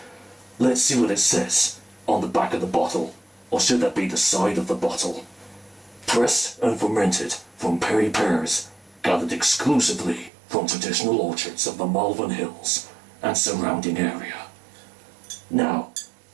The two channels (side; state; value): left; drops out; at 10.3 s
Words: Let's see what it says on the back of the bottle. Or should that be the side of the bottle? Pressed and fermented from perry pears, gathered exclusively from traditional orchards of the Malvern Hills and surrounding area. Now,